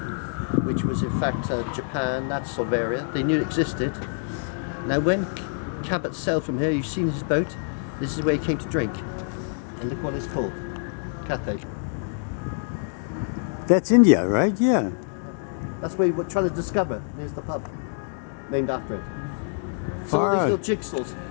Which was in fact Japan, that sort of area. They knew it existed. Now when Cabot sailed from here, you've seen his boat, this is where he came to drink. And look what it's called, Cathay. That's India, right? Yeah. That's where we're trying to discover. There's the pub, named after it. So Far all out. these little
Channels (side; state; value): right; silent; digital silence